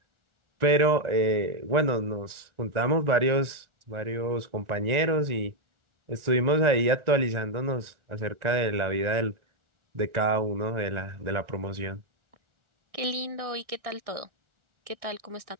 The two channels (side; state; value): left; late; 1.4 ms